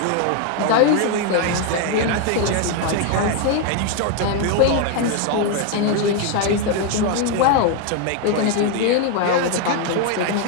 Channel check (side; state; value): both; different; correlation 0.01